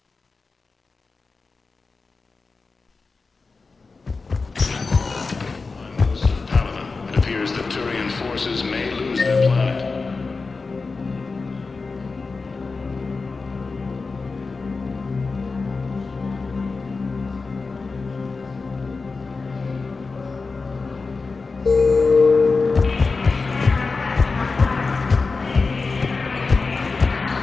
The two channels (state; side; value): quieter; right; 4.2 dB